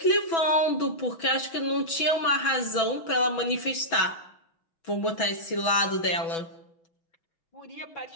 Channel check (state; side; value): late; right; 6.1 ms